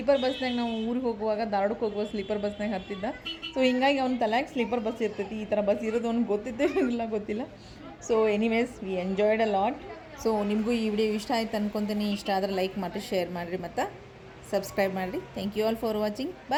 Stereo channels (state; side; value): identical; both; correlation 1.00